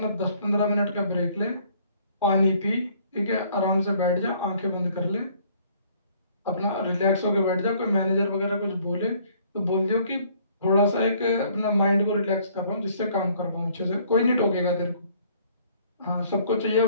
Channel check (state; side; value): inverted; both; correlation -0.60